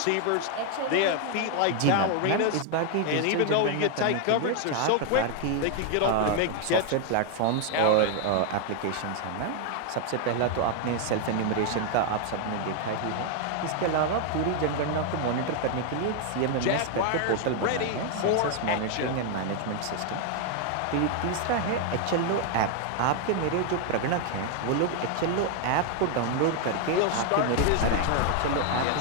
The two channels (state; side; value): different; both; correlation 0.00